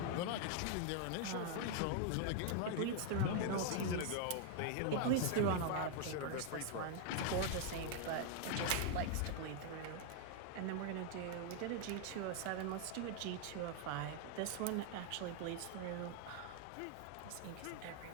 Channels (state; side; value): different; both; correlation 0.00